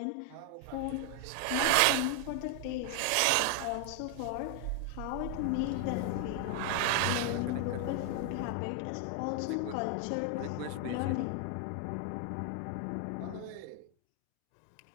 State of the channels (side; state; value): both; different; correlation 0.00